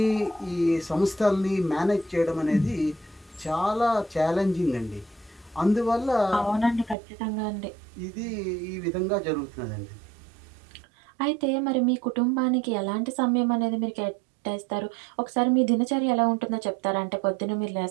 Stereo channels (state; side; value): drops out; left; at 7.0 s